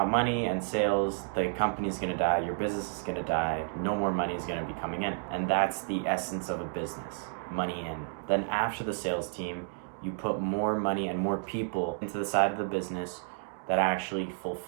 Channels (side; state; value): left; silent; digital silence